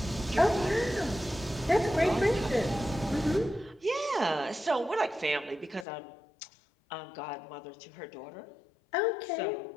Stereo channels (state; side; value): drops out; right; at 5.9 s